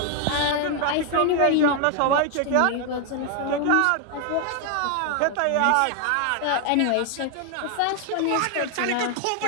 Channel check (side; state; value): both; different; correlation 0.00